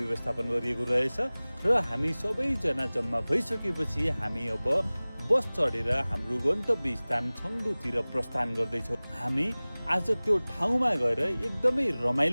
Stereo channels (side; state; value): both; inverted; correlation -0.99